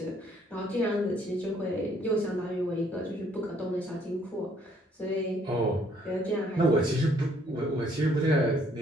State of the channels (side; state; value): both; normal; correlation 0.65